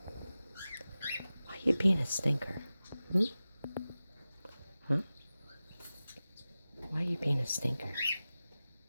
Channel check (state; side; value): inverted; both; correlation -0.95